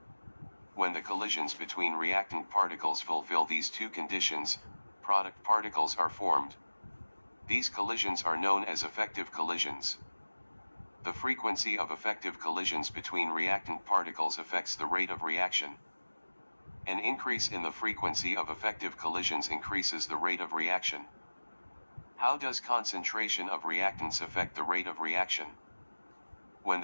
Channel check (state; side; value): inverted; both; correlation -1.00